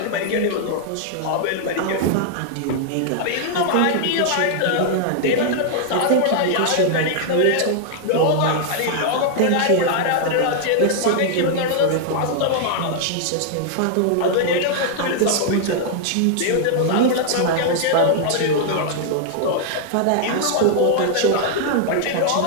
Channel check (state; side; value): different; both; correlation -0.01